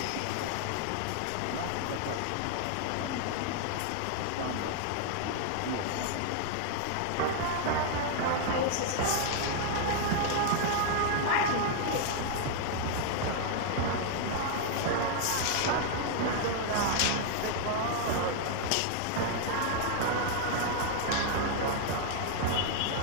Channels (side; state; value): both; different; correlation 0.00